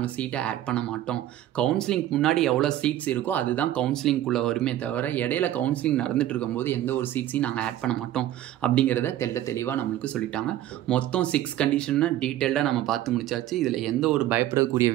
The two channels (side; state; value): left; quieter; 13.1 dB